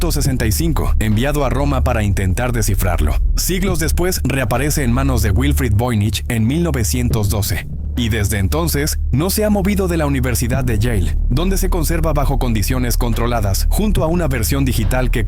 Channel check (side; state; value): both; identical; correlation 1.00